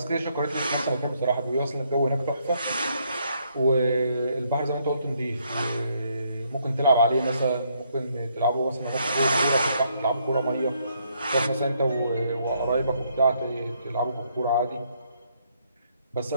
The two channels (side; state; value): both; inverted; correlation -0.72